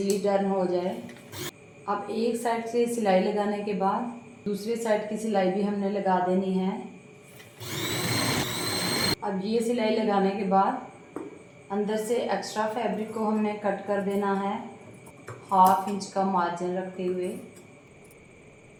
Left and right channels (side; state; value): both; identical; correlation 1.00